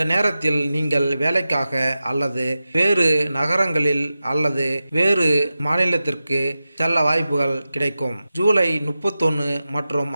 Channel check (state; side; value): inverted; both; correlation -0.93